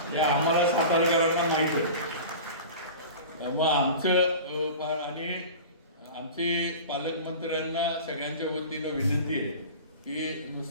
हे आम्हाला सातारकरांना माहित आहे. मग आणि आमचे पालकमंत्र्यांना सगळ्यांच्या वतीनं विनंती आहे की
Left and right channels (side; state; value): both; inverted; correlation -0.36